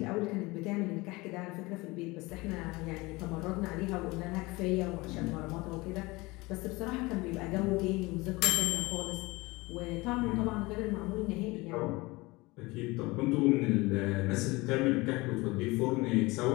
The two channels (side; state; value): right; quieter; 22.8 dB